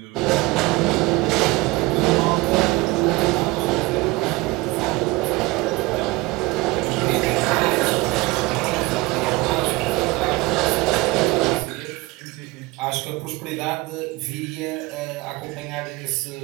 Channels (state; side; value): quieter; left; 21.8 dB